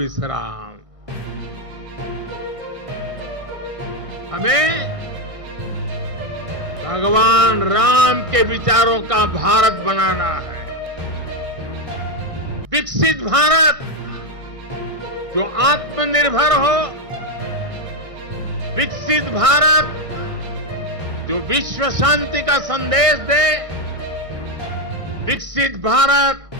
हमें भगवान राम के विचारों का भारत बनाना है। विकसित भारत जो आत्मनिर्भर हो, विकसित भारत जो विश्व शांति का संदेश दे, विकसित भारत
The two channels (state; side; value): late; left; 1.6 ms